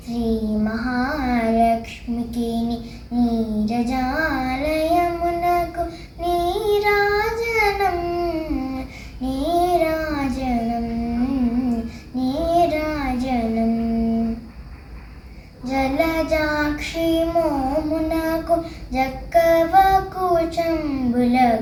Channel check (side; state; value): both; identical; correlation 1.00